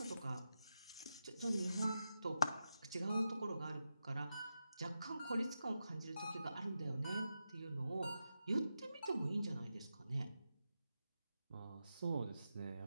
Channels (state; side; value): inverted; both; correlation -0.89